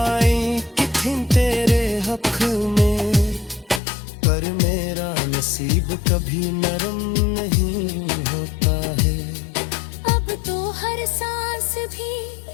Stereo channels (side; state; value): right; drops out; at 3.8 s